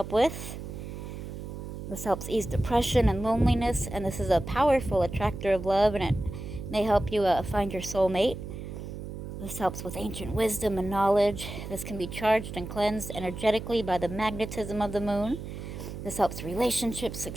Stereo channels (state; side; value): noise; right; hum, 9 dB below the sound